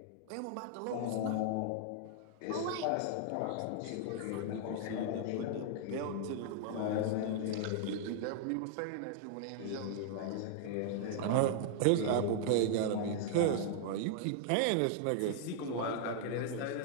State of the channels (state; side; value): different; both; correlation -0.01